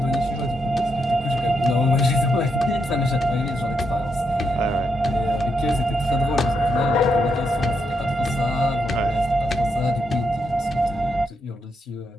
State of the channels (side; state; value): both; normal; correlation 0.80